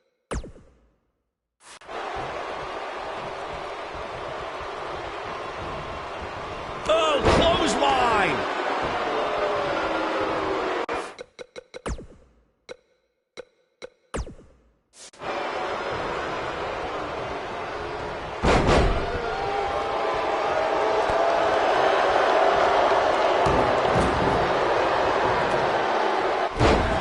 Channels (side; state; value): both; identical; correlation 1.00